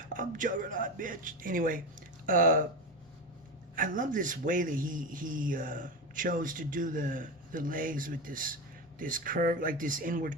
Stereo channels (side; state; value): both; normal; correlation 0.20